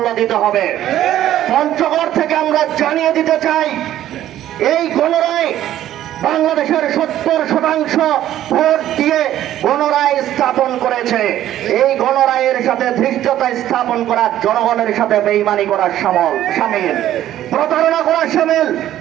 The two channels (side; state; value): left; quieter; 12.5 dB